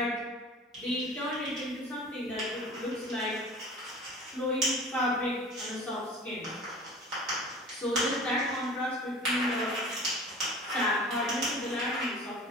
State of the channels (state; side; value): normal; both; correlation 0.41